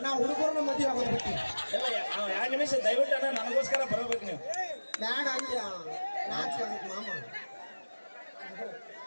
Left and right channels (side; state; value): both; inverted; correlation -1.00